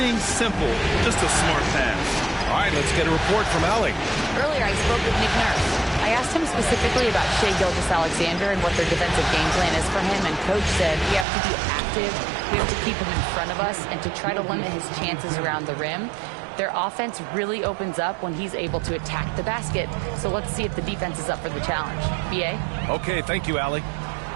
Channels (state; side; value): drops out; left; at 11.2 s